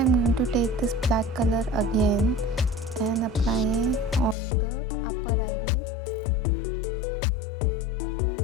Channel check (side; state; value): right; drops out; at 4.4 s